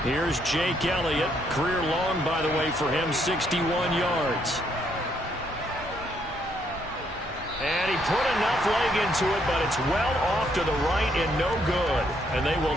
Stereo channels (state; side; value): normal; both; correlation 0.72